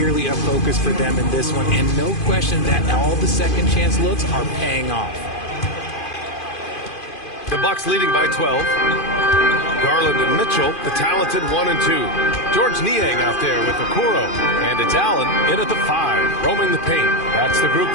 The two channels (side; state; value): right; late; 2.5 ms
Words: a focus for them in this one, and no question that all the second chance looks are paying off. The Bucks leading by 12. Garland and Mitchell, the talented 1 and 2. George Niang out there with Okoro. And it's Allen in at the 5, roaming the paint. That's the group